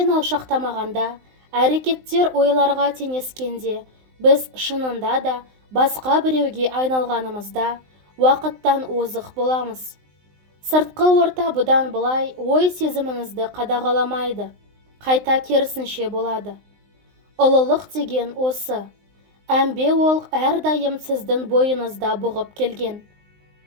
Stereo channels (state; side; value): late; left; 19 ms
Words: алшақтамағанда, әрекеттер ойларға теңескенде, біз шынында да басқа біреуге айналғанымызда уақыттан озық боламыз. Сыртқы орта бұдан былай ой сезіміңізді қадағаламайды, қайта керісінше болады. Ұлылық деген осы. Әмбе ол әрдайым сіздің бойыңызда бұғып келген.